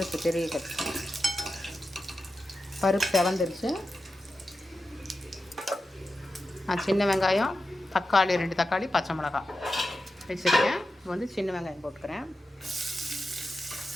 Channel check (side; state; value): both; normal; correlation 0.91